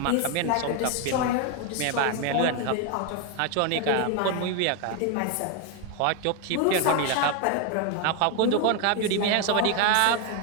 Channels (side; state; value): both; different; correlation 0.01